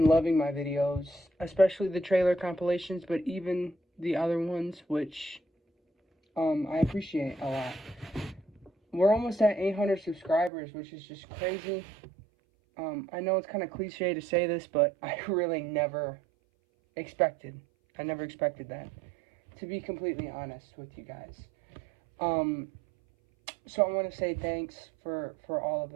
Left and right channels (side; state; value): left; drops out; at 10.5 s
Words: loving my videos, especially the trailer compilations, but even the other ones, which I appreciate a lot. We're almost at 800 subscribers, which is just crazy. I know it's kind of cliche to say this, but I really never expected that, to be completely honest with you guys. So I want to say thanks for all of